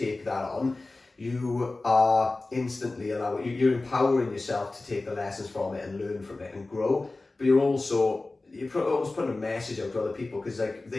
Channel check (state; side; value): quieter; right; 3.2 dB